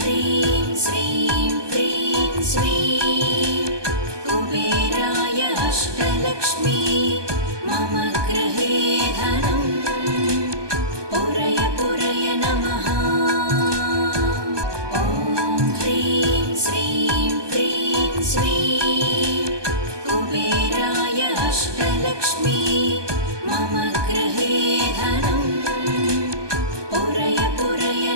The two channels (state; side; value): late; left; 1.2 ms